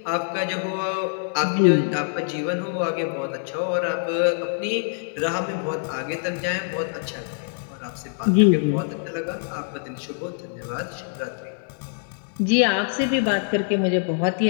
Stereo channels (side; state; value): right; silent; digital silence